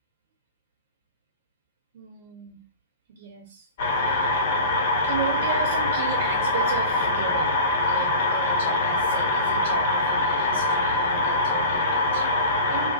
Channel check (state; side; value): inverted; both; correlation -0.36